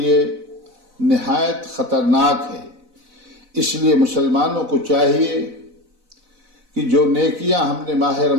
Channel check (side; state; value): left; late; 4.0 ms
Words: نہایت خطرناک ہے۔ اس لیے مسلمانوں کو چاہیے کہ جو نیکیاں ہم نے ماہ